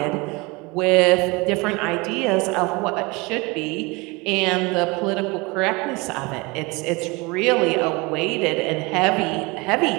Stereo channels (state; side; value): quieter; left; 25.7 dB